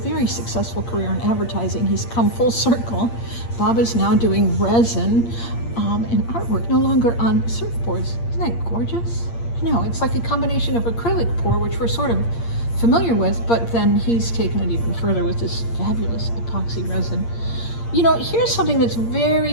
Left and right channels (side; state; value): right; late; 8.6 ms